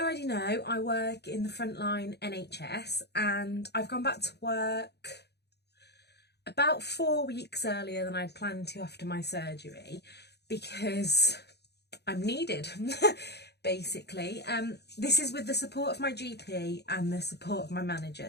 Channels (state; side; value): late; right; 0.48 ms